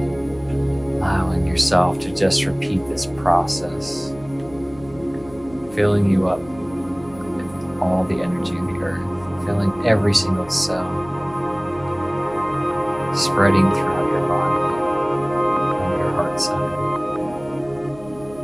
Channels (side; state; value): left; noise; hum, 21 dB below the sound